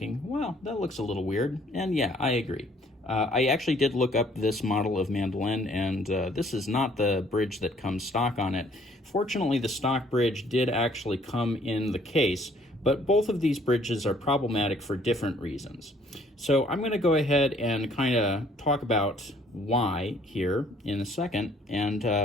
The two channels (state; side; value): normal; both; correlation 0.61